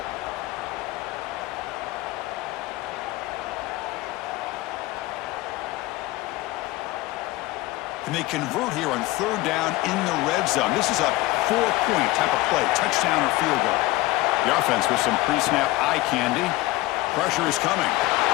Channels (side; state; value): right; quieter; 19.1 dB